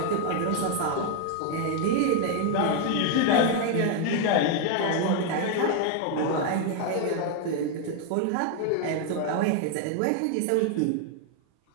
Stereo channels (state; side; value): different; both; correlation 0.00